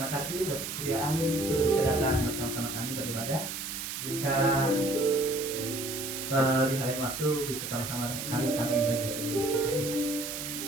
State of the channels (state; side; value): noise; right; hiss, 6 dB below the sound